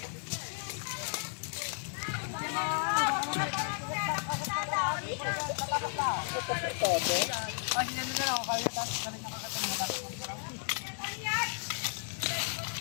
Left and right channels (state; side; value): silent; right; 55 dB below the other